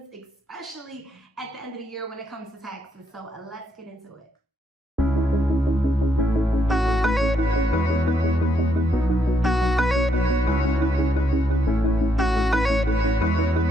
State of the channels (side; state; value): both; normal; correlation 0.75